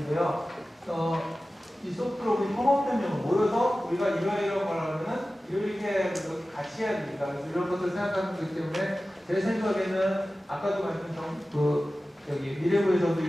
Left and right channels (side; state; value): both; normal; correlation 0.96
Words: 이 소프트로 협업변형을 모여서 우리가 이러이러한 걸 하면은 이렇게 같이 해야 됩니다. 그래서 이런 것들을 생각하는 거기 때문에 제 생각에는 아까도 말씀드린 여기 미래부에서도